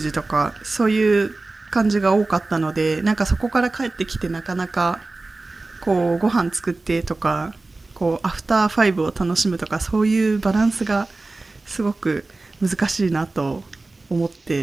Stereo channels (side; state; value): left; quieter; 3.3 dB